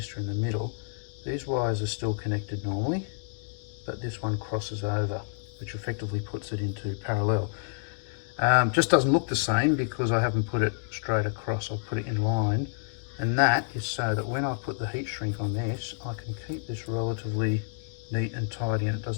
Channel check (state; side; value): silent; right; digital silence